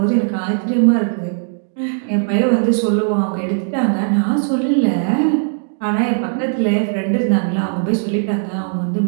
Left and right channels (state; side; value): silent; left; digital silence